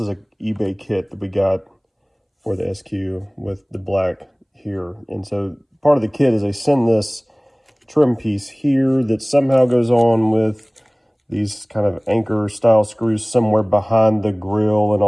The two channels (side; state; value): both; identical; correlation 1.00